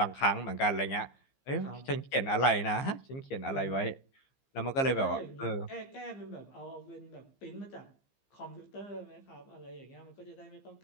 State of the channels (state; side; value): late; right; 15 ms